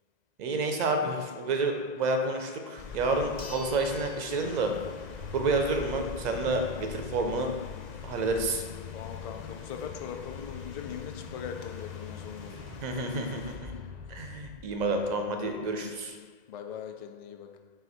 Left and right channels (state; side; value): late; left; 2.0 ms